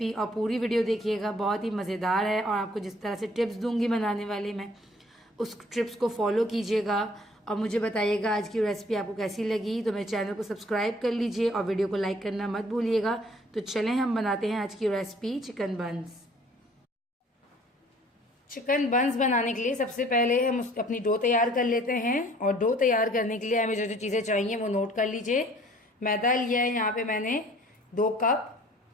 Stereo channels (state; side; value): normal; both; correlation 0.56